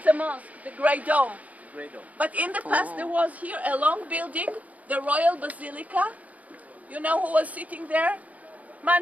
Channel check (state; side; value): late; left; 0.072 ms